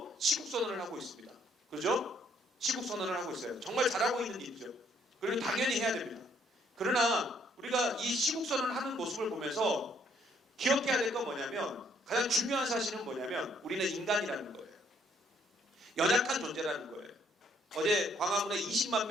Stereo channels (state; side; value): normal; both; correlation 0.67